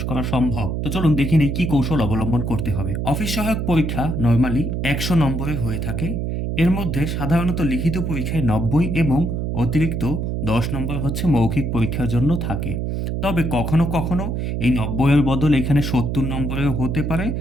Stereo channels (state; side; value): noise; right; hum, 2 dB below the sound